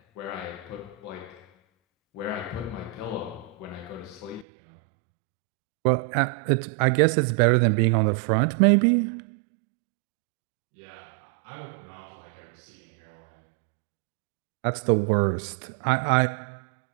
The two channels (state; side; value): drops out; left; at 4.5 s